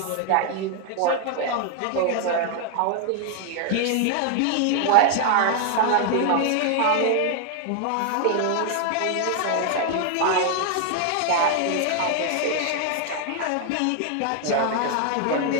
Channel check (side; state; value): both; different; correlation 0.00